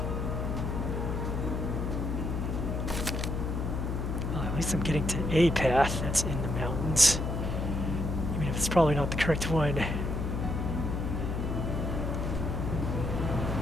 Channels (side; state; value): left; noise; hum, 1 dB below the sound